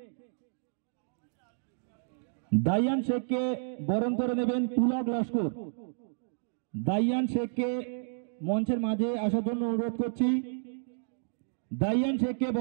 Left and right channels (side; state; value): left; silent; digital silence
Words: দাইয়ান শেখকে বরণ করে নেবেন পুলক লস্কর। দাইয়ান শেখকে মঞ্চের মাঝে আসার জন্য অনুরোধ করছি। দাইয়ান শেখকে